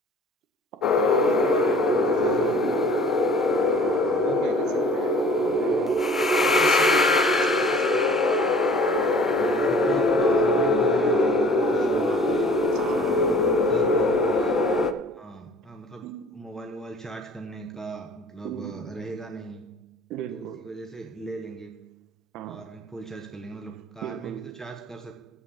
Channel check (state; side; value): normal; both; correlation 0.49